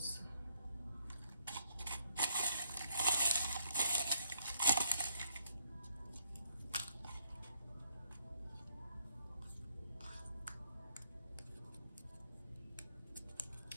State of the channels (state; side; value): inverted; both; correlation -0.71